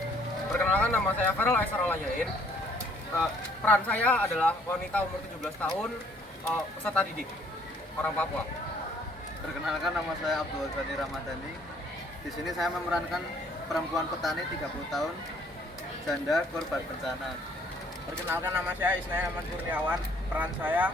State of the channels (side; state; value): both; normal; correlation 0.62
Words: perkenalkan nama saya Farel Aisar Alayain. Peran saya adalah wanita umur 17 tahun, peserta didik, orang Papua. Perkenalkan, nama saya Abdul Ghani Ramadhani. Di sini saya memerankan perempuan petani 30 tahun, janda korban bencana. Perkenalkan, nama saya Isnaya Ahmad Kurniawan. Peran saya